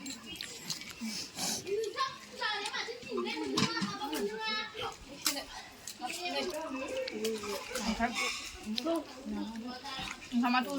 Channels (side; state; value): both; identical; correlation 1.00